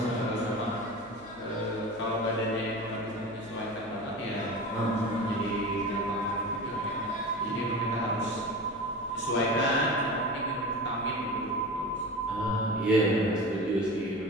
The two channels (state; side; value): noise; left; hum, 25 dB below the sound